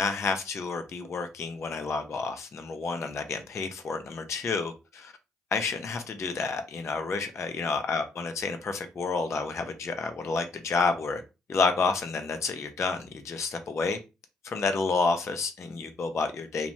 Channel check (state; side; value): quieter; right; 3.9 dB